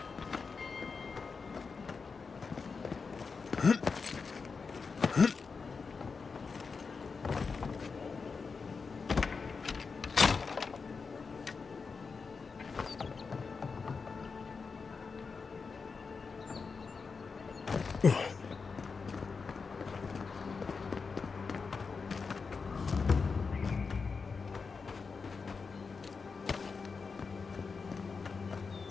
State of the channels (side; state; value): right; quieter; 5.0 dB